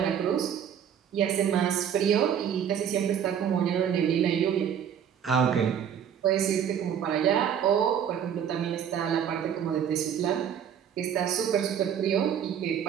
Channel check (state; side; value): quieter; left; 8.7 dB